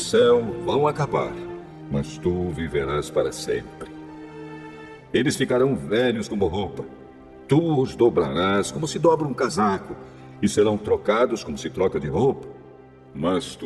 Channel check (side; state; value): both; identical; correlation 1.00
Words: vão acabar, mas tu viverás para sempre. Eles ficarão velhos como roupa. Tu os dobrarás como se dobra um casaco, e serão trocados como se troca de roupa. Mas